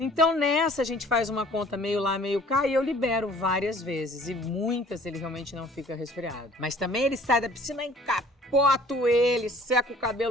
nessa a gente faz uma conta meio lá, meio cá e eu libero várias vezes. E muitas ele realmente não fica resfriado. Mas também ele sai da piscina e capoto ele, seca o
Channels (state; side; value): normal; both; correlation 0.53